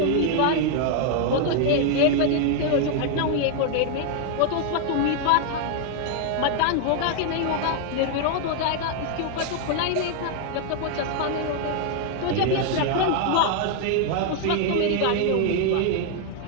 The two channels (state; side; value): different; both; correlation 0.00